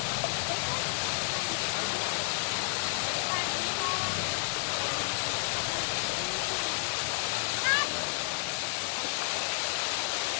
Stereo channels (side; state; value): right; silent; 57 dB below the other